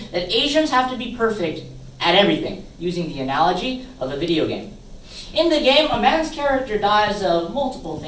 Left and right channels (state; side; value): identical; both; correlation 1.00